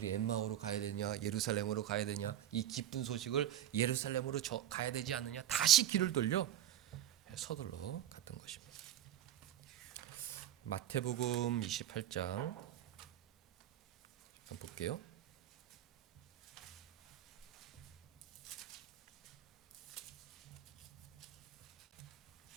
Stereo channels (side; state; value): left; quieter; 11.7 dB